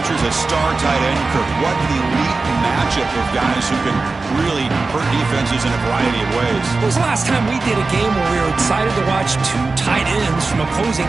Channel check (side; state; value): left; quieter; 3.8 dB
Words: a star tight end. What an elite matchup of guys who can really hurt defenses in a variety of ways. When was the last time we did a game where we were excited to watch two tight ends from opposing